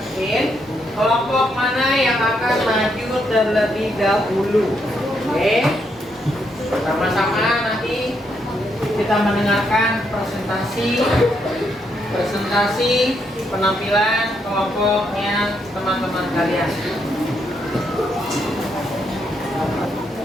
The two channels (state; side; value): normal; both; correlation 0.77